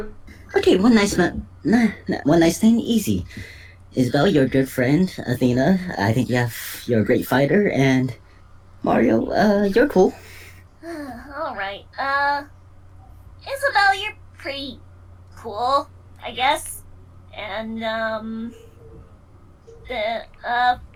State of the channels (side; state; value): both; identical; correlation 1.00